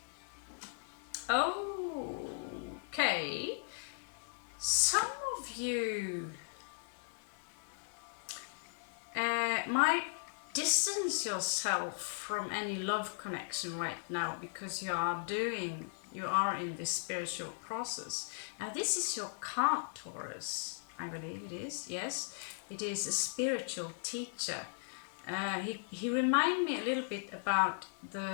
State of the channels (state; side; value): silent; right; digital silence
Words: Okay, some of you might distance yourself from any love connection right now because you are in this spiritual process. Now this is your card, Taurus. I believe it is. Yes, it is a spiritual teacher. He reminded me a little bit about